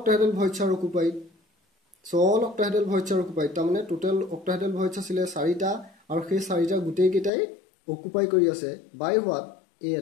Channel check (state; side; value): drops out; right; at 7.3 s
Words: voids are occupied. So all octahedral voids are occupied. তাৰমানে total octahedral voids আছিল 4টা আৰু সেই 4টা গোটেই কেইটাই অকুপাই কৰি আছে by what? A